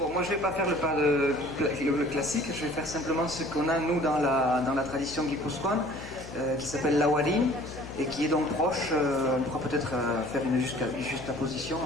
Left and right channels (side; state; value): left; noise; hum, 14 dB below the sound